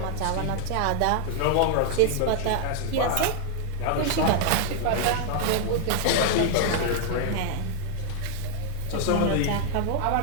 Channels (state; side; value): different; both; correlation 0.00